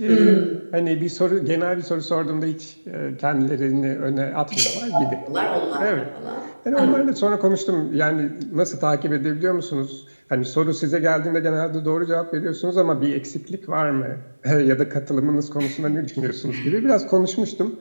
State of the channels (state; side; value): inverted; both; correlation -1.00